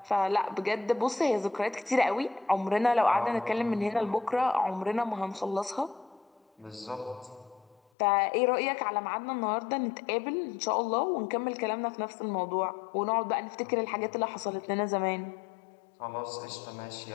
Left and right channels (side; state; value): right; drops out; at 7.8 s